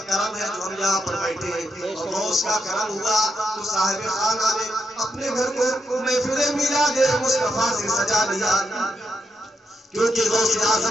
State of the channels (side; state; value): both; normal; correlation 0.83